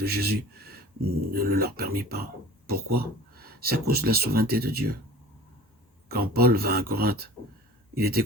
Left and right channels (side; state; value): both; normal; correlation 0.41